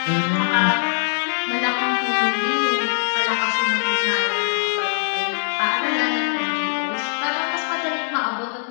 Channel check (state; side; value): silent; right; digital silence